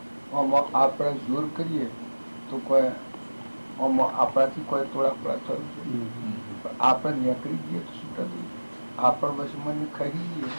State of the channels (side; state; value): both; inverted; correlation -1.00